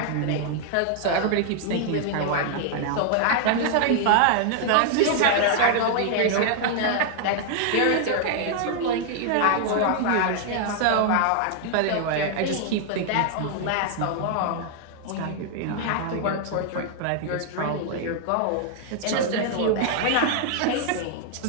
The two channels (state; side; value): different; both; correlation 0.00